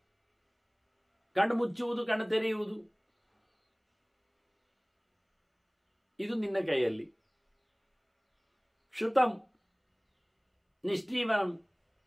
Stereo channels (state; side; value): identical; both; correlation 1.00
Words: ಕಣ್ಣು ಮುಚ್ಚುವುದು, ಕಣ್ಣು ತೆರೆಯುವುದು, ಇದು ನಿನ್ನ ಕೈಯಲ್ಲಿ. ಕ್ಷುತಂ ನಿಷ್ಠೀವನಂ,